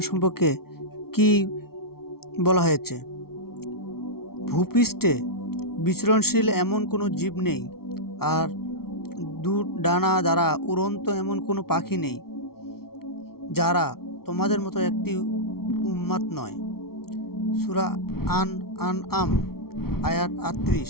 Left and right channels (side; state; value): right; late; 0.94 ms